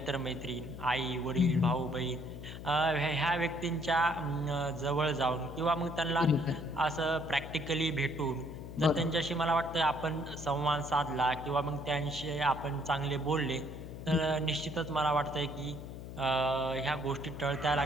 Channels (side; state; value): left; noise; hum, 10 dB below the sound